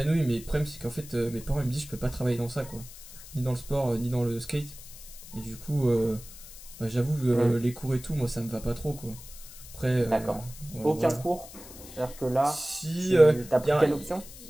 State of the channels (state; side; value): noise; left; hiss, 16 dB below the sound